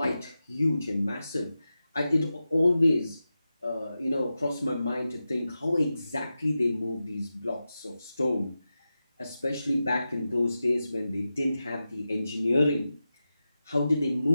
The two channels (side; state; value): both; inverted; correlation -0.92